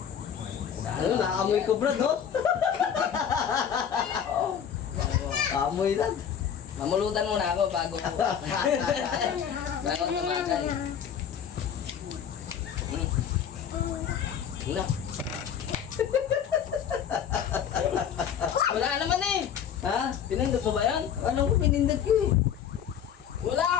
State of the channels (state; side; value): quieter; right; 8.4 dB